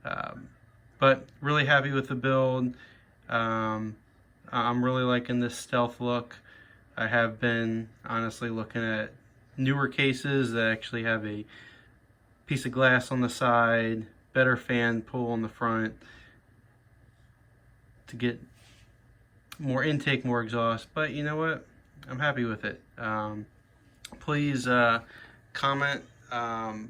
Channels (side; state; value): both; identical; correlation 1.00